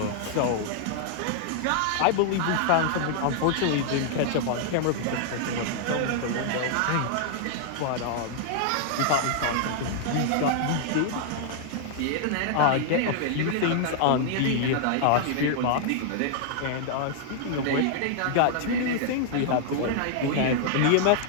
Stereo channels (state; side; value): different; both; correlation 0.00